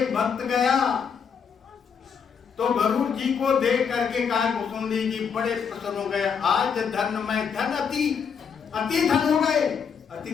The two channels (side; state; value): right; quieter; 6.7 dB